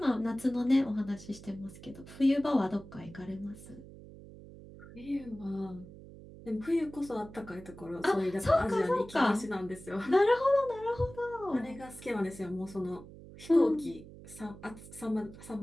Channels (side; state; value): right; noise; hum, 17 dB below the sound